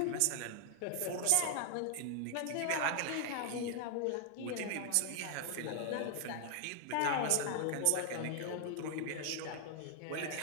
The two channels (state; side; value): different; both; correlation 0.00